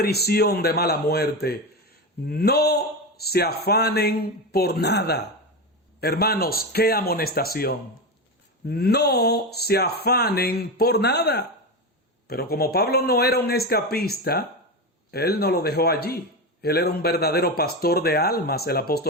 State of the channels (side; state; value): both; normal; correlation 0.18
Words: de mala muerte: no se afanen por nada. Hermanos, qué amonestación. No se afanen por nada. Pero como Pablo no era un escapista, él no lo dejó allí. Él era un verdadero pastor de almas, el